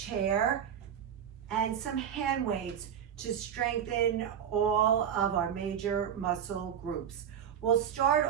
and some hand weights to strengthen all of our major muscle groups. We'll start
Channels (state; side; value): quieter; left; 8.8 dB